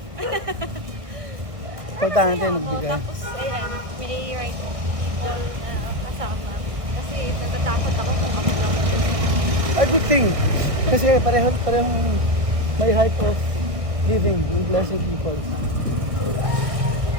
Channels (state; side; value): late; left; 1.5 ms